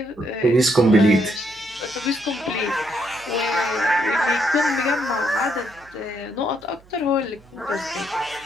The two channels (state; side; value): noise; right; hum, 27 dB below the sound